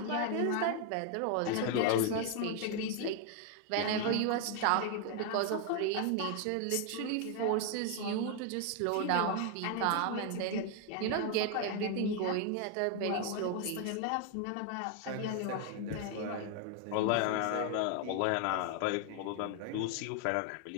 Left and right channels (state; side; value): different; both; correlation 0.01